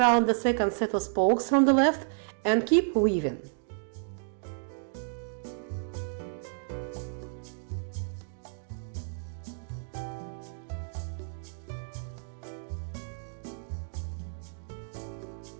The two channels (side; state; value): left; silent; digital silence